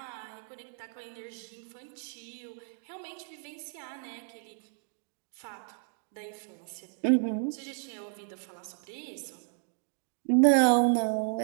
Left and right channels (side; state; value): left; silent; 56 dB below the other